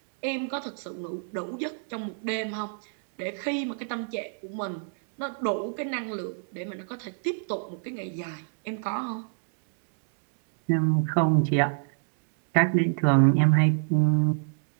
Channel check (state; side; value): silent; left; digital silence